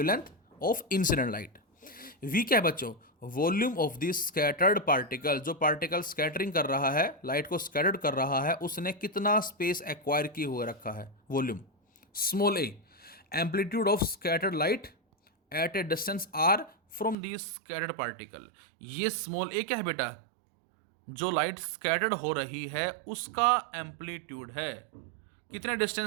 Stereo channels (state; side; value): drops out; left; at 17.2 s